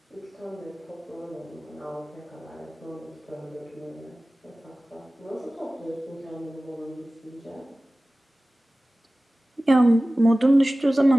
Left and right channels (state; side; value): normal; both; correlation 0.97